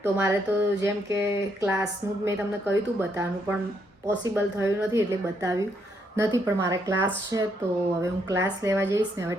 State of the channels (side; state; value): both; normal; correlation 0.75